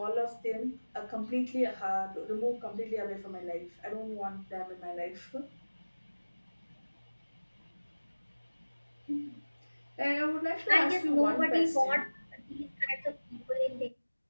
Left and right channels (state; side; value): inverted; both; correlation -1.00